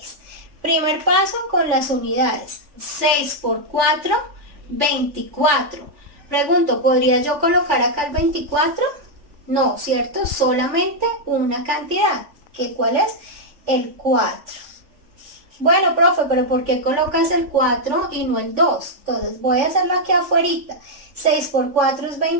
Primer paso con las unidades. 6 por 4, 24. Pregunto, ¿podría yo colocar acá el 24? No, ¿cierto? Solamente una cantidad. ¿Qué cuál es? El 4. Bueno, profe, pero ¿por qué colocas el 4 y no el 2? Entonces voy a hacerlo aquí afuera. 6 por 4 es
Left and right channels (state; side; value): late; left; 3.4 ms